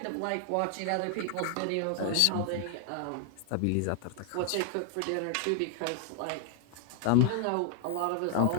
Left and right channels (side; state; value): both; different; correlation 0.00